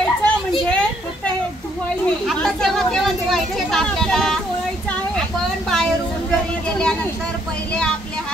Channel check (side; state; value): both; normal; correlation 0.68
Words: म्हणजे फक्त हे धुवायचे. आता केव्हा केव्हा धुवायचे आपल्याला. चोळायचं आहे. आपण बाहेरून घरी गेल्यानंतर पहिले आपले